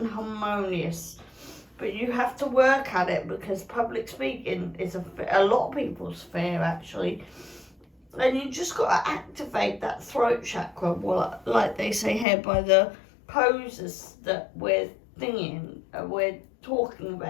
harmonious. But you have to work at it, because public speaking is a lot of people's fear, actually. And you just got to activate that throat chakra, well, like they say here, by the poses that we're talking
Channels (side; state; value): right; drops out; at 12.2 s